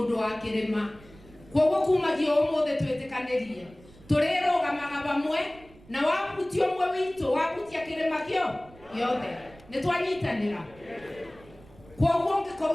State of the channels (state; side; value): noise; right; rumble, 24 dB below the sound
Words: wa kirima kwoguo kumagio umuthe twitikanirie turirugamaga bamwe na wabutia umwe witu wabutia kirima kio giothe ni twanyitanira kwoguo